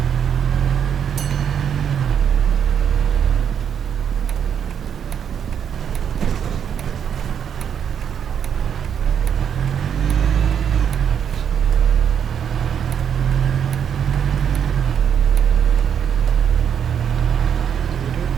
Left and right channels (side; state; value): left; quieter; 8.2 dB